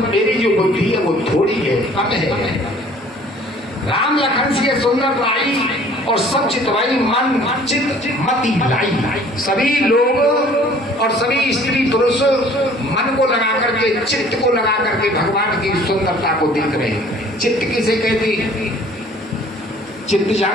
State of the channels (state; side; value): normal; both; correlation 0.53